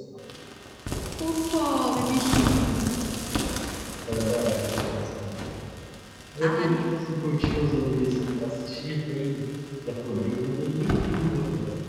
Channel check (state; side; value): identical; both; correlation 1.00